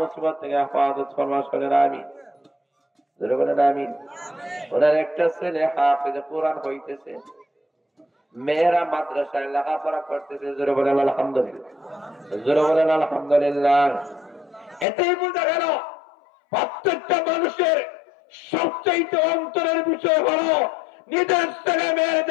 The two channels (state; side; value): drops out; right; at 14.9 s